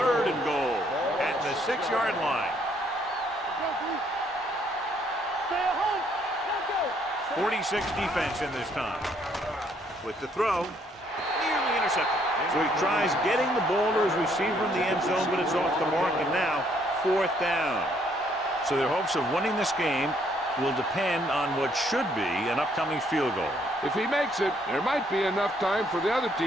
and goal at the 6-yard line. Stay at home. Let's go. 46 defense in this time. With the throw, nearly intercepted. So he tries getting the ball to his receiver in the end zone, but it's off the mark, and now 4th down. So their hopes of winning this game will depend on what should be an upcoming field goal. If he makes it, there might be enough time for the other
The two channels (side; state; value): both; normal; correlation 0.68